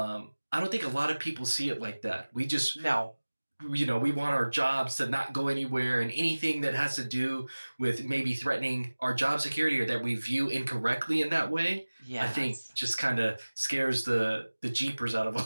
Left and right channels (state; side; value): inverted; both; correlation -1.00